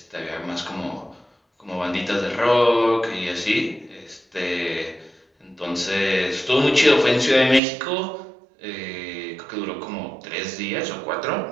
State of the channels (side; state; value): left; drops out; at 7.6 s